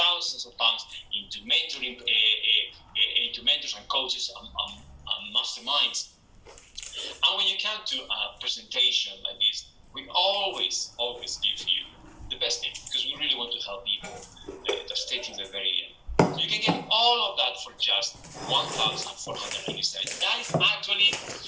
of pounds into mentoring, into mentors and coaches and masterminds. And when you come to a presentation like this, we always give you the best thing, because we really want to help people to stay till the very end. So you can get all of that for just $1,487. That is actually,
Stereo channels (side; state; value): both; identical; correlation 1.00